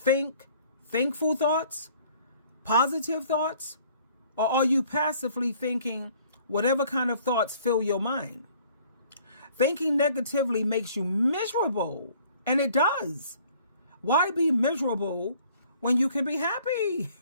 thankful thoughts, positive thoughts? Or are you passively thinking whatever kind of thoughts fill your mind? Thinking negatively makes you miserable, and it does. Why be miserable when you can be happy?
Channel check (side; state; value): both; inverted; correlation -0.57